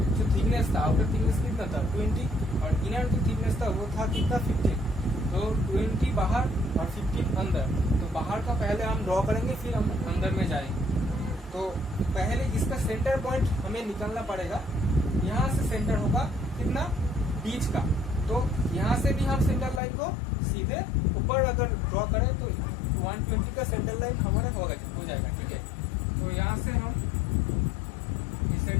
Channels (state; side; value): drops out; right; at 19.8 s